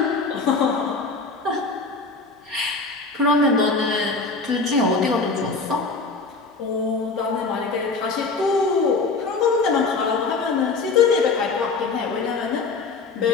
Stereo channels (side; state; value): right; quieter; 4.1 dB